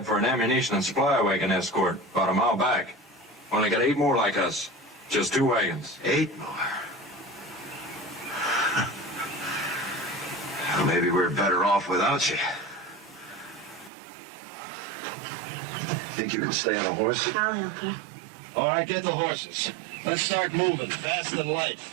for an ammunition and supply wagon escort about a mile back. Only got 8 more like us. Just 2 wagons. 8 more? Well, maybe we're better off without you. Think you can stay on a horse? I'll help you. All right, get the horses. Let's start moving, fast and light.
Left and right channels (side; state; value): left; drops out; at 13.9 s